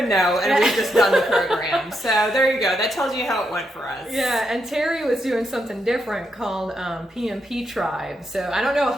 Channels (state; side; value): normal; both; correlation 0.81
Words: know, and we've just done the program. So there you go. That tells you how it went for us. Yeah, and Terry was doing something different called PMP Tribe. So I don't know a